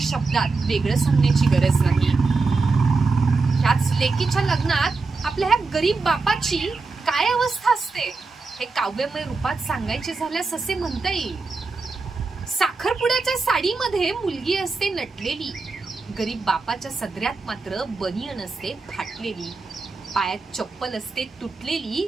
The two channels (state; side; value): quieter; left; 4.0 dB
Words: वेगळं सांगण्याची गरज नाही. ह्याच लेकीच्या लग्नात आपल्या ह्या गरीब बापाची काय अवस्था असते हे काव्यमय रूपात सांगायचे झाल्यास असे म्हणता येईल. साखरपुड्याच्या साडीमध्ये मुलगी असते नटलेली, गरीब बापाच्या सदऱ्यात मात्र बनियन असते फाटलेली, पायात चप्पल असते